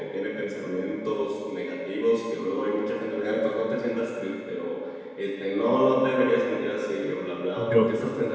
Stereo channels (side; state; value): both; identical; correlation 1.00